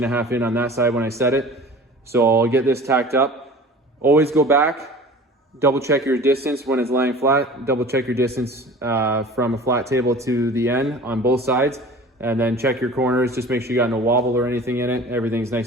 in on that side when I set it. So I'll get this tacked up. Always go back. Double check your distance when it's laying flat. Double check your distance from a flat table to the end on both sides. And then check your corners. Just make sure you got no wobble or anything in it. Everything's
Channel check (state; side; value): normal; both; correlation 0.41